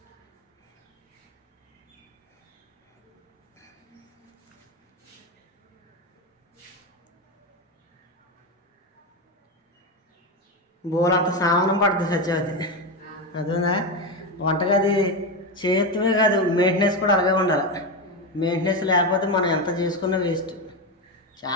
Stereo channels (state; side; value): normal; both; correlation 0.14